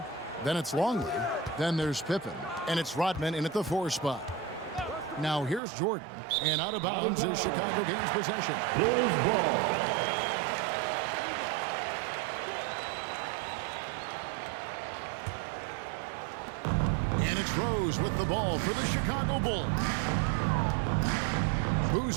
Then it's Longley. Then there's Pippen. And it's Rodman in at the 4 spot. Now here's Jordan. And out of bounds is Chicago gains possession. And it's Rose with the ball for the Chicago Bulls.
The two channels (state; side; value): drops out; left; at 5.6 s